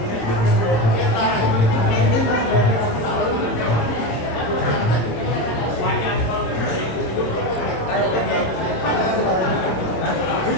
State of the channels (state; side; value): late; right; 27 ms